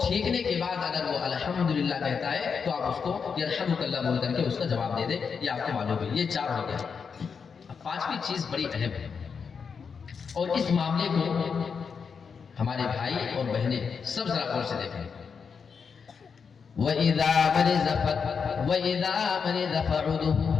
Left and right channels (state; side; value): quieter; right; 6.0 dB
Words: کے بعد اگر وہ الحمدللہ کہتا ہے تو آپ اس کو یرحمک اللہ بول کر کے اس کا جواب دے دیں. یہ آپ کو معلوم ہے. یہ 4 ہو گیا. اب 5ویں چیز بڑی اہم ہے, اور اس معاملے کو ہمارے بھائی اور بہنیں سب ذرا غور سے دیکھیں. وَإِذَا مَرِضَ فَعُودُهُ.